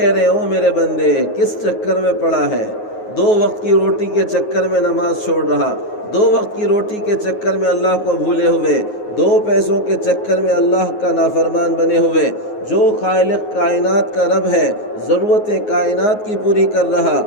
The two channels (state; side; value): late; right; 9.5 ms